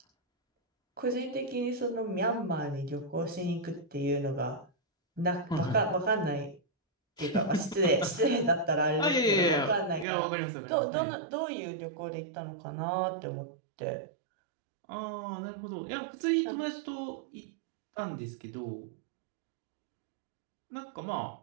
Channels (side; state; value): left; drops out; at 10.1 s